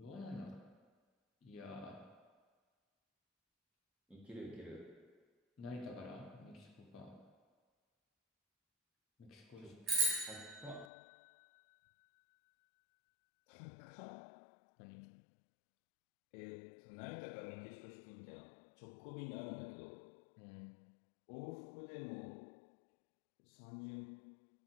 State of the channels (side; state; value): right; drops out; at 10.9 s